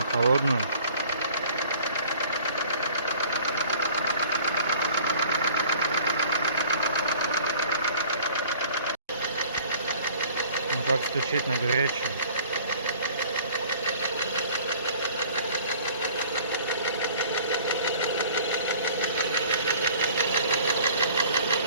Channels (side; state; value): both; inverted; correlation -0.50